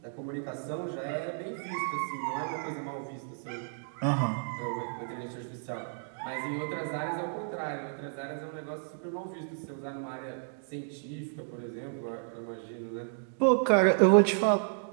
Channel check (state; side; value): silent; left; digital silence